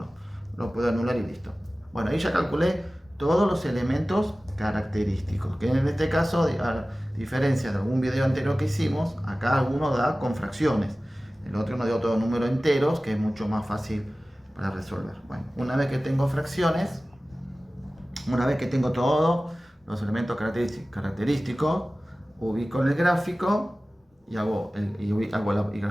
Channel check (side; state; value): both; normal; correlation 0.97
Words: Lo puedo anular y listo. Bueno, ahí ya calculé todos los elementos característicos. Que en este caso, a diferencia de algún video anterior que hicimos, acá alguno da con fracciones. El otro nos dio todo número enteros, que es mucho más fácil para resolver. Bueno, una vez que tengo fracciones, una vez que tengo todos los elementos característicos, ubico en el gráfico y